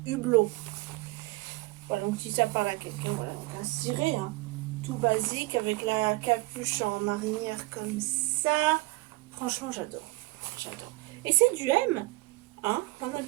Hublot. Voilà, donc si ça parle à quelqu'un, voilà, donc un ciré, hein, tout basique, avec la capuche en marinière comme ça. Franchement, j'adore. J'adore. Et c'est du M, hein. En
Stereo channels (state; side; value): quieter; left; 22.1 dB